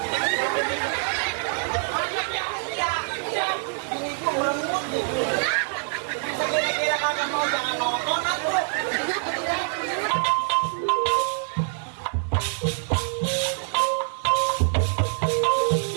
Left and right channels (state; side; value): silent; left; 56 dB below the other